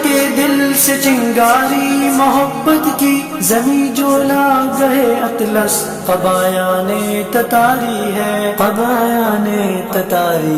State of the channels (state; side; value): identical; both; correlation 1.00